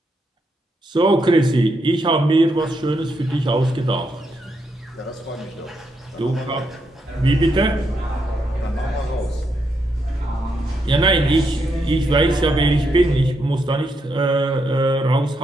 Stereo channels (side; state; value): both; normal; correlation 0.80